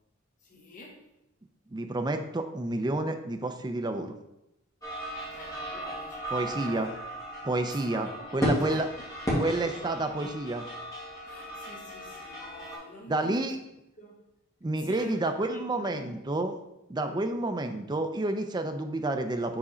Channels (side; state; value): both; normal; correlation 0.57